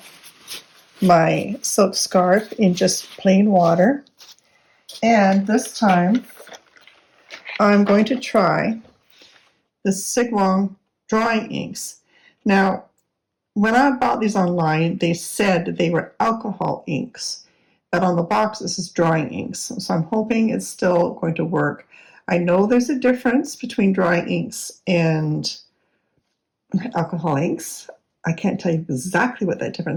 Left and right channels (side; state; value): both; identical; correlation 1.00